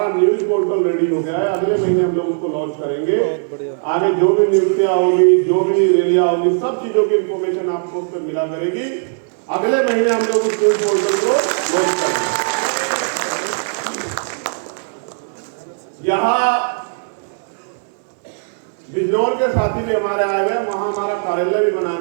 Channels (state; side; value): silent; left; digital silence